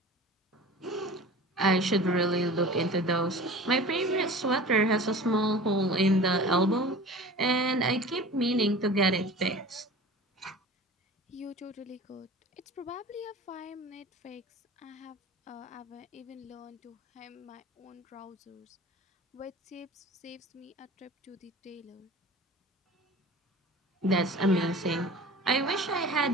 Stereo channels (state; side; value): normal; both; correlation 0.39